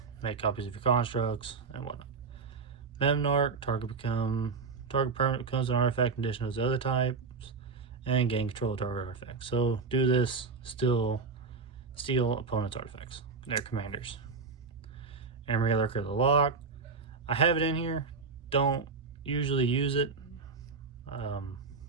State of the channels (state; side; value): quieter; left; 4.7 dB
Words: Make copies of your constructs and whatnot. Memnarch, target permanent becomes an artifact in addition to those other types, and gain control of target artifacts. So do this, steal opponent's artifacts, their commanders. Emery Lurker of the Lock. I have it in here, don't usually use it.